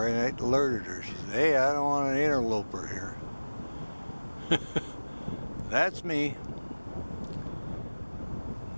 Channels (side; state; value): both; inverted; correlation -1.00